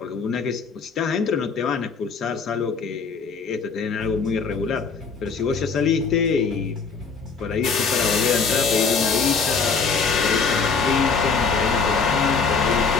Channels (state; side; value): quieter; right; 5.0 dB